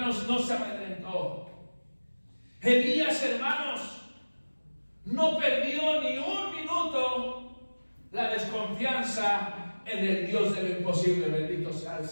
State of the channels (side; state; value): both; inverted; correlation -1.00